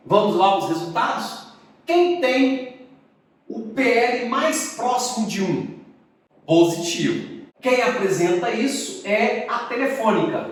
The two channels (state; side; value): identical; both; correlation 1.00